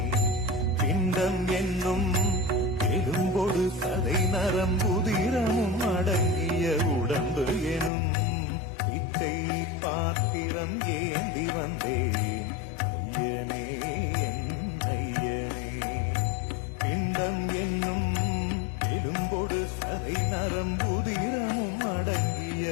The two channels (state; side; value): drops out; right; at 7.9 s